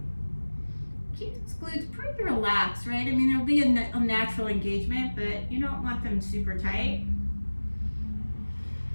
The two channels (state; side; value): inverted; both; correlation -1.00